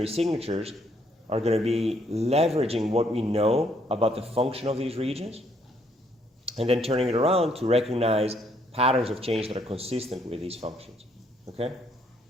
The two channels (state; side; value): normal; both; correlation 0.69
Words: signatures are going to be leveraging what we know about the function of these regions and then turning it around to recognize patterns of change that are consistent with these functions. Okay?